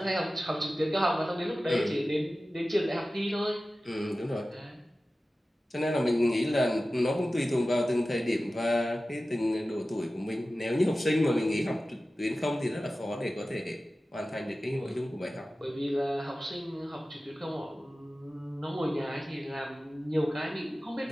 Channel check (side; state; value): both; normal; correlation 0.95